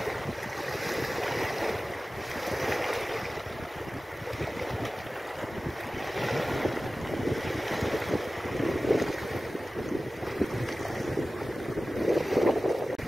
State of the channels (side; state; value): both; normal; correlation 0.96